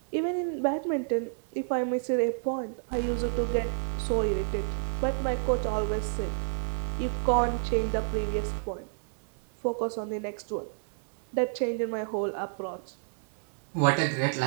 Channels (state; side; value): silent; left; 58 dB below the other